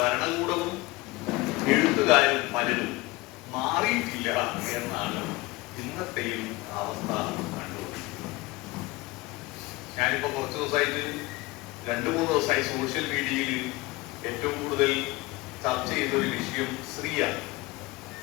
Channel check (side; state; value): right; quieter; 21.4 dB